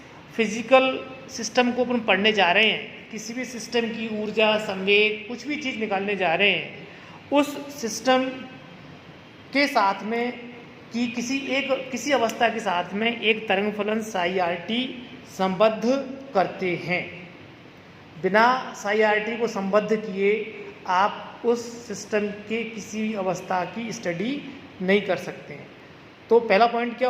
फिजिकल सिस्टम को अपन पढ़ने जा रहे हैं, किसी भी सिस्टम की ऊर्जा, संवेग, कुछ भी चीज़ निकालने जा रहे हैं, उस सिस्टम के साथ में कि किसी अवस्था के साथ में एक तरंग फलन psi-r-t संबद्ध करते हैं। बिना psi-r-t को संबद्ध किए आप उस सिस्टम के किसी भी अवस्था की स्टडी नहीं कर सकते हैं। तो पहला पॉइंट क्या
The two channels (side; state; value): both; identical; correlation 1.00